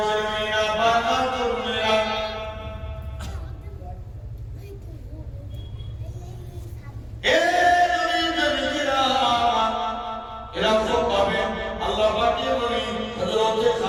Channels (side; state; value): both; identical; correlation 1.00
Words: ছেলেমেয়েরা বাবা তরুণেরা এরকম ভাবে আল্লাহ পাকের নবী হযরত